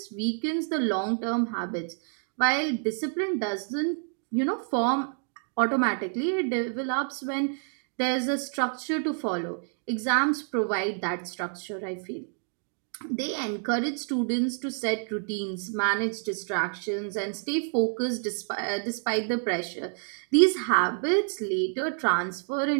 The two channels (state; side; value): silent; left; 59 dB below the other